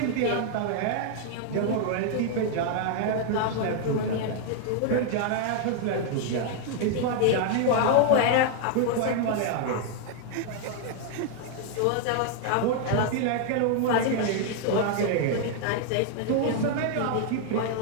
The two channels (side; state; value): both; different; correlation 0.00